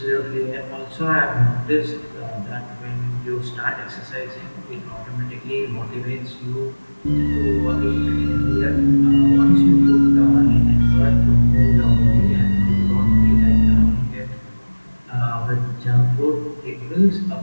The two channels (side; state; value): both; inverted; correlation -1.00